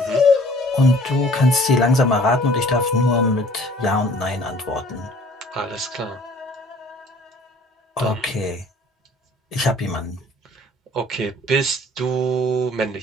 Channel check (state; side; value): normal; both; correlation 0.52